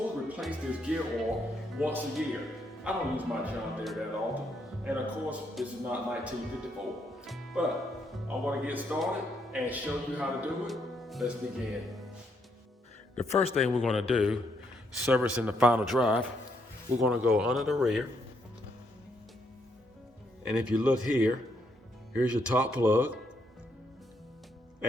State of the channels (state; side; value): normal; both; correlation 0.75